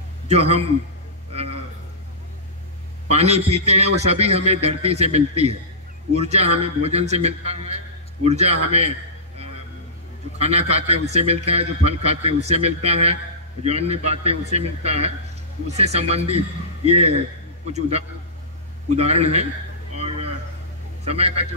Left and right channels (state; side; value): normal; both; correlation -0.18